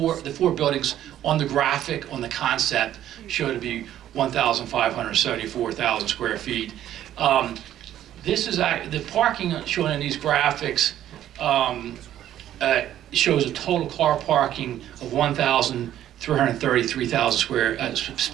buildings on the graphic, on the concept, show to be 1,574,000 square feet. This is the parking shown in these graphics shows a total car parking of 1,333,000 square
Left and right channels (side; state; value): left; quieter; 11.8 dB